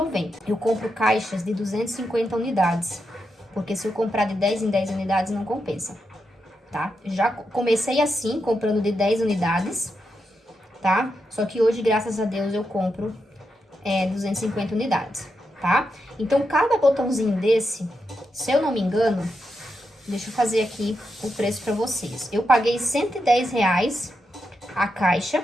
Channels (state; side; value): normal; both; correlation 0.85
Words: Eu compro caixas de 250 unidades. Porque se eu comprar de 10 em 10 unidades, não compensa, tá? Já comecei assim, comprando de 10 unidades, tá? Só que hoje, graças a Deus, eu compro 250 unidades, tá? Então, cada botãozinho desse, se eu não me engano, deixa eu fazer aqui o preço pra vocês. Eu paguei R$ 110 a caixa